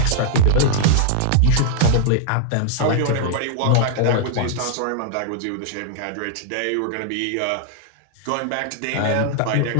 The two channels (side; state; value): both; different; correlation -0.01